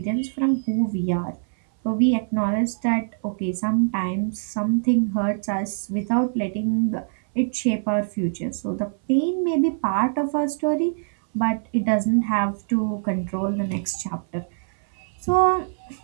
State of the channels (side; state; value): left; silent; 63 dB below the other